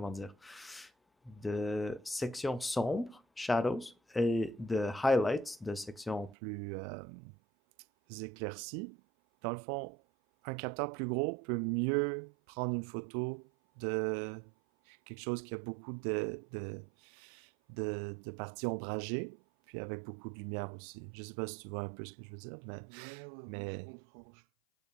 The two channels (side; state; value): left; drops out; at 6.4 s